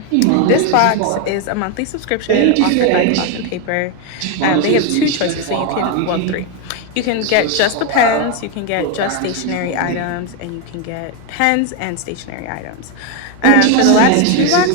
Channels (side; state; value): both; different; correlation 0.02